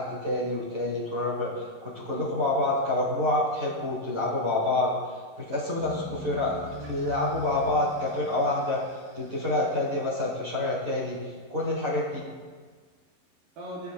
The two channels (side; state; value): left; late; 11 ms